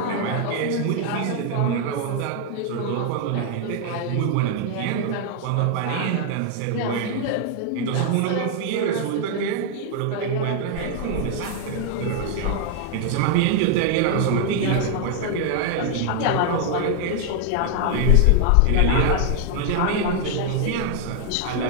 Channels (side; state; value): both; different; correlation 0.00